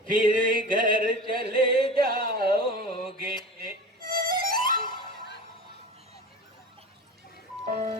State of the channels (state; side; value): normal; both; correlation 0.34